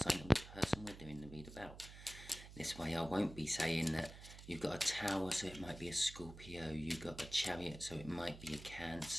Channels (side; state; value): right; noise; hum, 14 dB below the sound